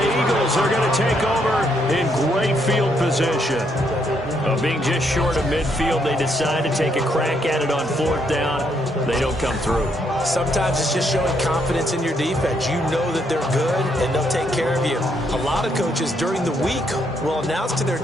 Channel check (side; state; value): both; normal; correlation 0.74